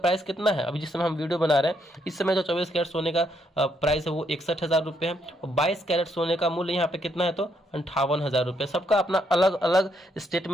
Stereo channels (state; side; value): normal; both; correlation 0.75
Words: कितना है, अभी जिस समय हम वीडियो बना रहे हैं इस समय जो 24 कैरेट सोने का प्राइस है वो 61,000 रुपये है। और 22 कैरेट सोने का मूल्य यहाँ पे कितना है, तो 58,000 रुपये। सबका अपना अलग अलग स्टेट